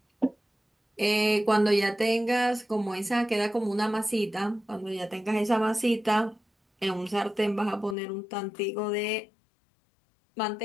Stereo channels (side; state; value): right; drops out; at 8.0 s